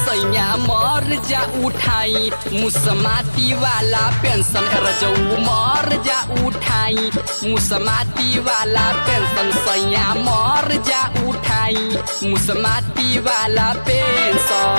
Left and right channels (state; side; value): inverted; both; correlation -1.00